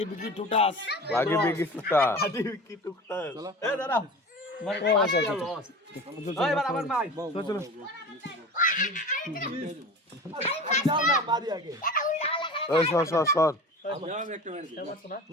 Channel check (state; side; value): normal; both; correlation 0.34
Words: বিকি টুটাস এ দাদা এবার আমার ভাই চলো যাও না মারি আগে ওই সর